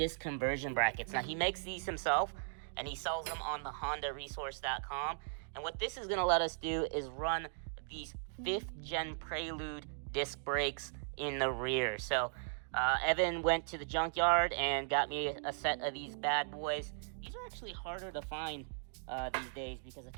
conversion brackets. Now, he makes these himself, and he sells them on the HondaResource.com. And what this is going to let us do is run these 5th gen Prelude disc brakes in the rear. So, Evan went to the junkyard and got me a set of these bad boys. These are actually harder to find these days because I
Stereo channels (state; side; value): silent; left; digital silence